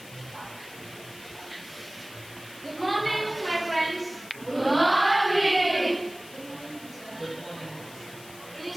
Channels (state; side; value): noise; left; hiss, 18 dB below the sound